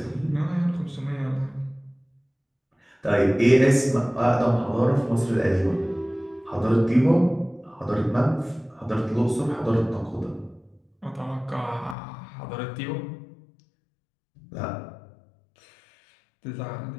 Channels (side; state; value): right; drops out; at 12.0 s